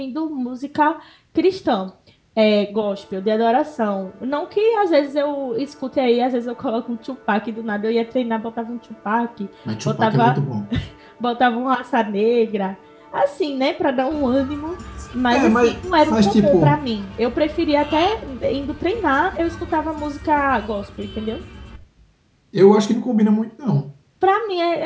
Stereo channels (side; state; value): both; identical; correlation 1.00